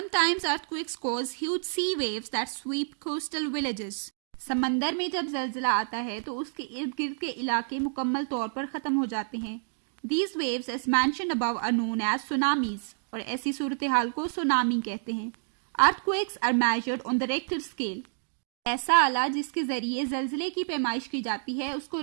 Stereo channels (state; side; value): silent; left; digital silence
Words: earthquakes cause huge sea waves that sweep coastal villages. समंदर में जब जलजला आता है तो उसके इर्द गिर्द के इलाके मुकम्मल तौर पर ख़त्म हो जाते हैं। These waves as mentioned above are known as tsunamis और ऐसी सूरत हाल को सुनामी कहते हैं। Earthquakes are measured on the Richter scale. ऐसा आला जिसके जरिए जलजले की पैमाइश की जाती है उसको